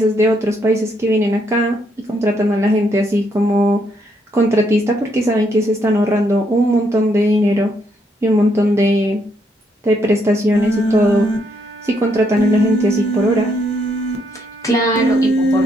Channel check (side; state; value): both; normal; correlation 0.74